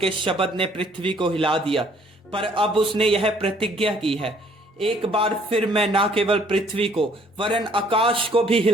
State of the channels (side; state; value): both; normal; correlation 0.61